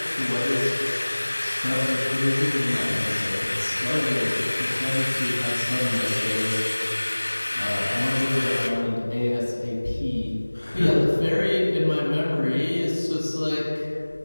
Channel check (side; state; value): both; inverted; correlation -1.00